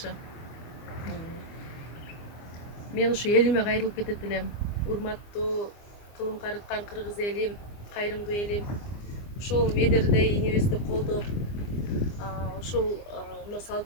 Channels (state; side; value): late; right; 24 ms